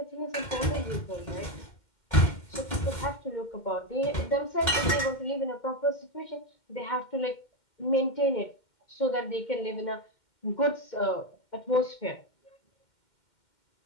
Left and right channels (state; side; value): late; right; 2.1 ms